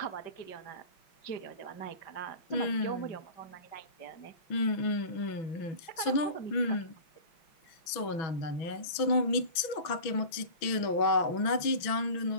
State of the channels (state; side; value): late; right; 6.1 ms